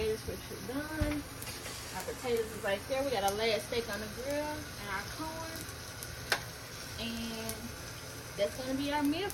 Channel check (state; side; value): identical; both; correlation 1.00